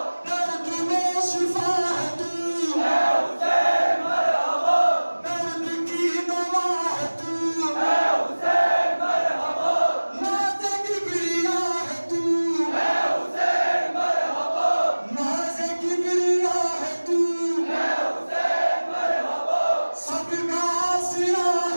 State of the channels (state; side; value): inverted; both; correlation -1.00